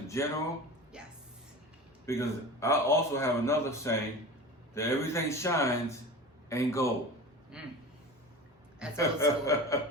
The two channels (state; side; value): normal; both; correlation 0.33